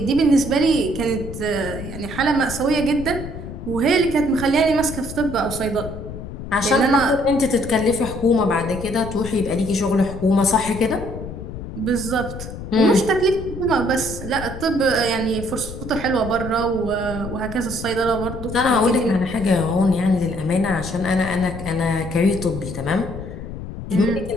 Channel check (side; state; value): left; noise; rumble, 10 dB below the sound